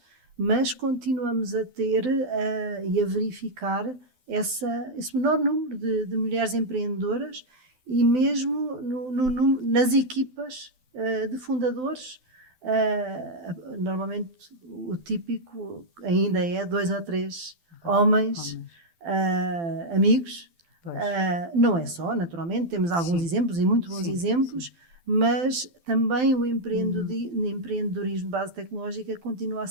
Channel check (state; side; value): late; left; 12 ms